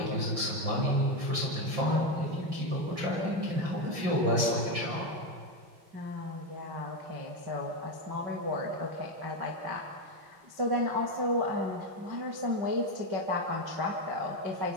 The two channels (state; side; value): late; left; 5.8 ms